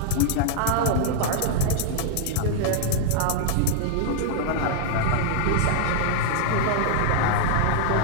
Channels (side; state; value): both; different; correlation 0.00